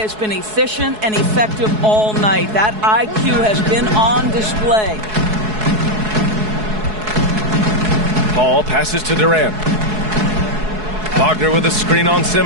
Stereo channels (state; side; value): late; left; 4.7 ms